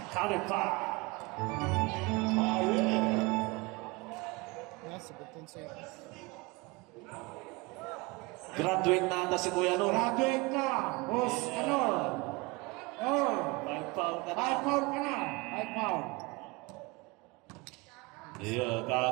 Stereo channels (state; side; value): quieter; left; 25.4 dB